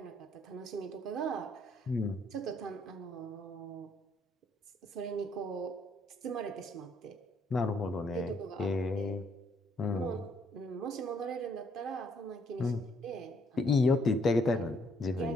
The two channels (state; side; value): normal; both; correlation 0.69